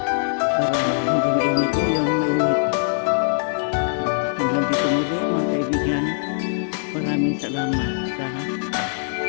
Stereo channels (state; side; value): silent; right; digital silence